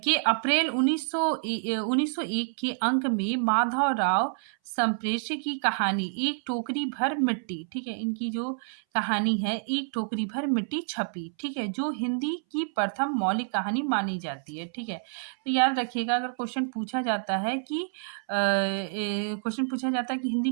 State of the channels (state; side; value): silent; left; 59 dB below the other